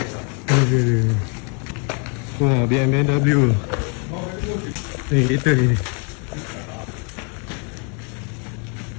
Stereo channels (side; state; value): right; quieter; 37.5 dB